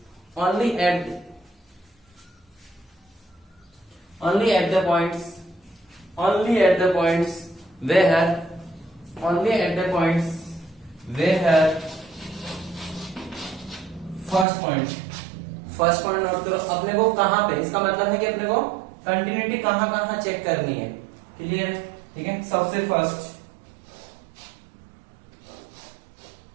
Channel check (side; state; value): left; drops out; at 14.5 s